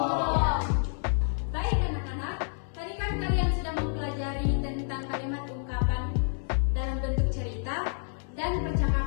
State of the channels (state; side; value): silent; right; 59 dB below the other